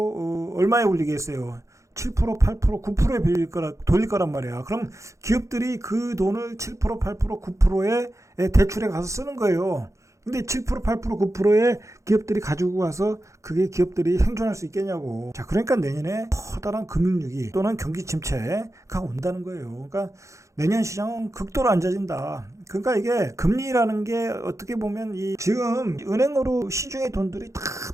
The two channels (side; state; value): left; late; 0.15 ms